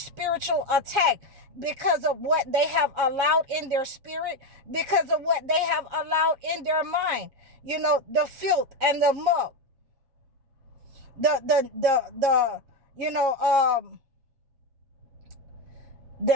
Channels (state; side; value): late; left; 7.3 ms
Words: attack because of what they have allowed in their spirit, because of what they have allowed in their mind. You know, the filth and the muck, the you know,